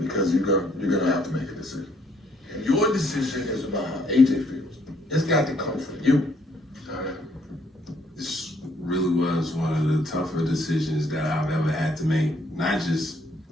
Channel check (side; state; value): both; normal; correlation 0.67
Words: you're gonna have to make a decision. And your decision is about how AJ feels. It's got to come from you. This really was one of the tougher decisions that I've ever had to make. Not just